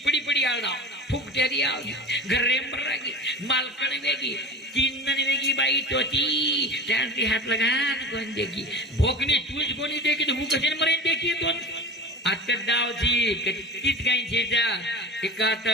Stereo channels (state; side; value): normal; both; correlation 0.32